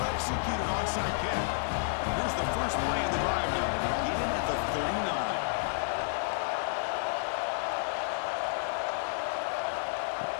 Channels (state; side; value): silent; right; digital silence